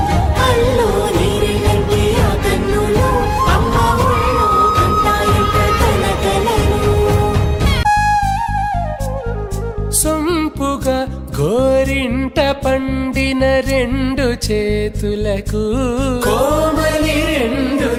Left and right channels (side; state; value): both; identical; correlation 1.00